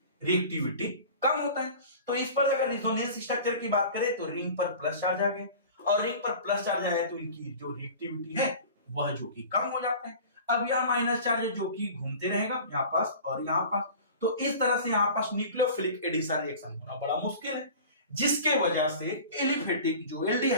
रिएक्टिविटी कम होता है। तो इस पर अगर रेजोनेंस स्ट्रक्चर की बात करें तो रिंग पर प्लस चार्ज आ गए, और रिंग पर प्लस चार्ज आया तो इनकी जो रिएक्टिविटी है वह जो कि कम हो जाता है। अब यह माइनस चार्ज जो कि घूमते रहेगा यहाँ पास और यहाँ पास, तो इस तरह से यहाँ पास न्यूक्लियोफिलिक एडिशन रिएक्शन होना बड़ा मुश्किल है, जिसके वजह से एलिफेटिक जो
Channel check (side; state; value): both; inverted; correlation -0.39